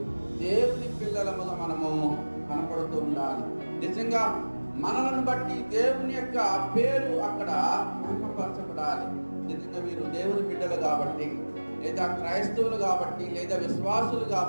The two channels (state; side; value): inverted; both; correlation -1.00